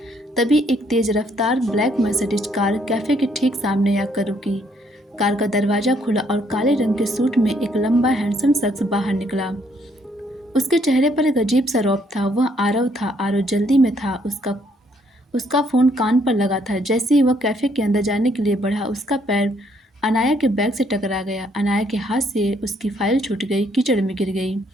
तभी एक तेज रफ्तार ब्लैक मर्सिडीज कार कैफे के ठीक सामने आकर रुकी। कार का दरवाजा खुला और काले रंग के सूट में एक लंबा हैंडसम शख्स बाहर निकला। उसके चेहरे पर एक अजीब सा रौब था। वह आरव था। आरव जल्दी में था। उसका फोन कान पर लगा था। जैसे ही वह कैफे के अंदर जाने के लिए बढ़ा, उसका पैर अनाया के बैग से टकरा गया। अनाया के हाथ से उसकी फाइल छूट गई, कीचड़ में गिर गई।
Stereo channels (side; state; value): both; normal; correlation 0.69